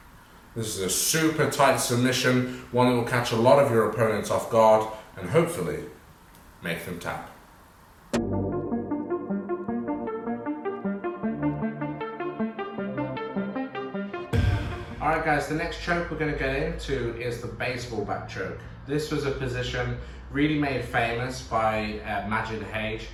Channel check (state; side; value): identical; both; correlation 1.00